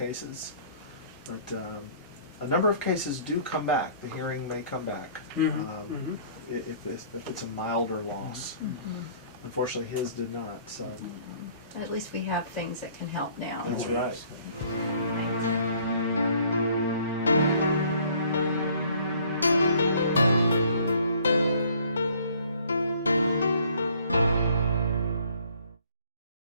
But a number of cases do come back. The hearing may come back if it's a milder loss. Unfortunately, his did not. So At least we have things that can help now. that's right.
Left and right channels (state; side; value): inverted; both; correlation -0.57